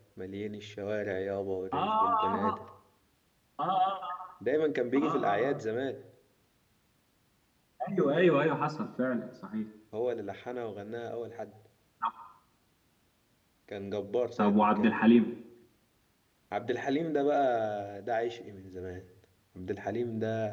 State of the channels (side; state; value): both; identical; correlation 1.00